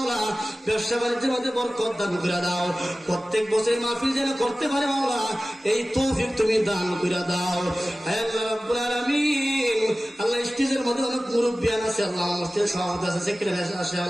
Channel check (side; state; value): both; normal; correlation 0.97